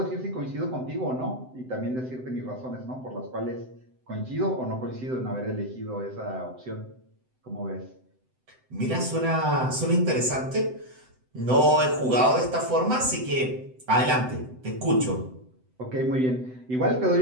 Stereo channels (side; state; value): left; late; 7.8 ms